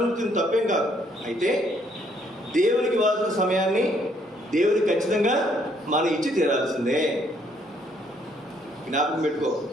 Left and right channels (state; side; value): normal; both; correlation 0.68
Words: తప్పేం కాదు. అయితే దేవునికి ఇవ్వాల్సిన సమయాన్ని దేవునికి ఖచ్చితంగా మనం ఇచ్చి తీరాల్సిందే. జ్ఞాపకం పెట్టుకో.